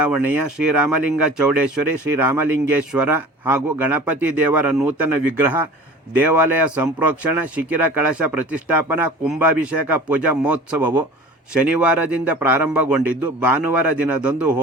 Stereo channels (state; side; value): normal; both; correlation 0.40